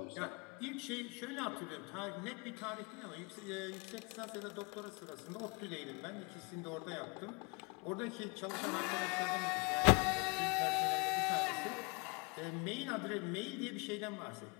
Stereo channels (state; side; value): quieter; right; 31.1 dB